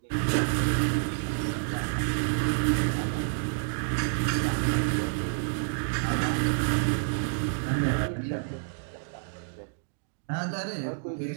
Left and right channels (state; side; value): silent; left; digital silence